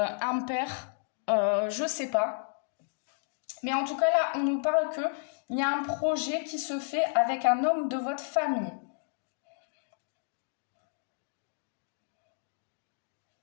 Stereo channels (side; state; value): right; silent; digital silence